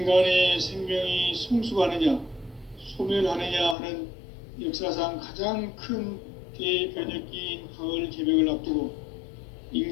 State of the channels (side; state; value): right; drops out; at 3.8 s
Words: 생명이 성숙하느냐, 소멸하느냐 하는 역사상 가장 큰 대변혁기인 가을 개벽을 앞두고